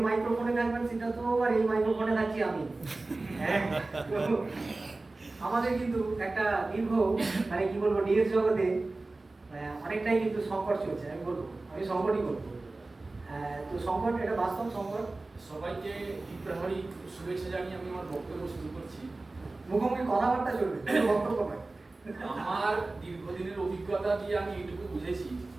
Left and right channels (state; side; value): quieter; left; 3.2 dB